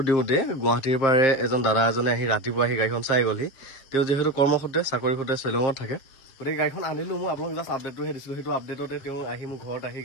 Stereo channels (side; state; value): right; late; 7.4 ms